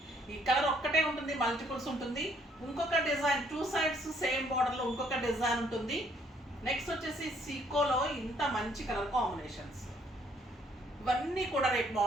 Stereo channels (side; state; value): both; normal; correlation 0.66